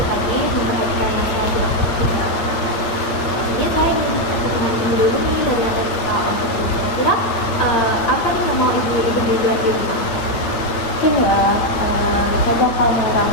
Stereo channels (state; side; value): late; right; 8.7 ms